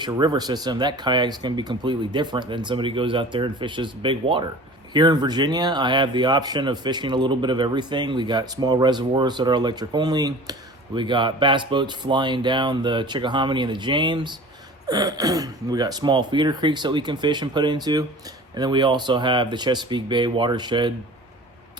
a river system, that kayak's going to be completely different than somebody goes out there and fishes big water. Here in Virginia, I have the option of fishing a little bit of everything. We got small reservoirs that are electric only. We got bass boats flying down the Chickahominy and the James. We got small feeder creeks that we can fish and put into. And then we also have the Chesapeake Bay watershed,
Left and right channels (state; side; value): normal; both; correlation 0.41